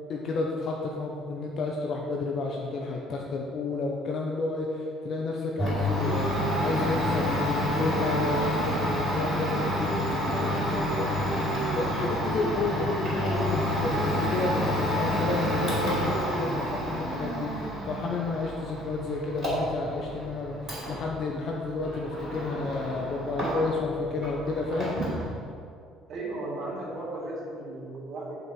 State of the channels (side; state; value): both; normal; correlation 0.57